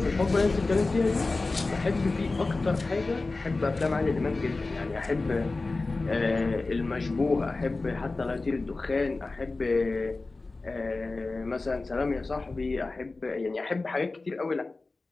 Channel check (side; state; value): right; quieter; 3.5 dB